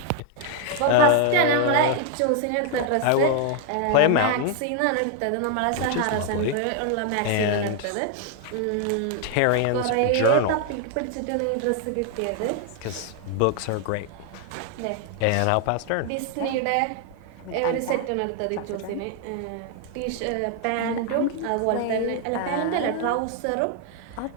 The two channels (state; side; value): different; both; correlation 0.00